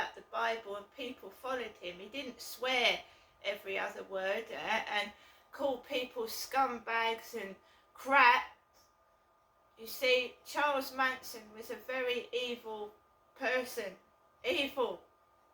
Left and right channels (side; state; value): both; identical; correlation 1.00